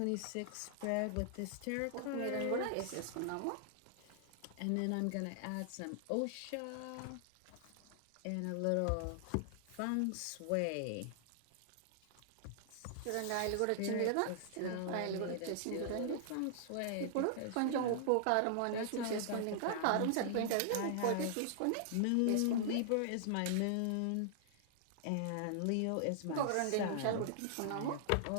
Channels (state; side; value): different; both; correlation -0.01